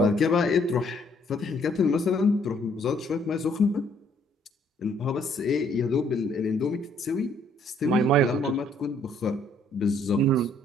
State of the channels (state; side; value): normal; both; correlation 0.65